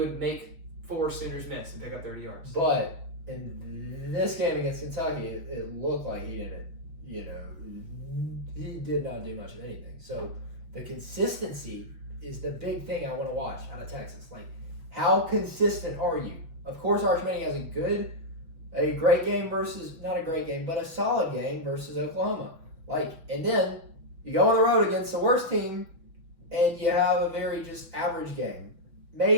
make 4 Sooners miss and pick up 30 yards. But in this game against Kentucky, it looked like he didn't, he did not do much of anything. So the consistency is the big thing I want to watch out of Texas. Like, how consistent are you? Of course, Arch Manning has a great game versus, not a great game, but a solid game versus Oklahoma. Like, and then you go on the road against the worst team and you have a very just average game.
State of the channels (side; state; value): left; late; 6.1 ms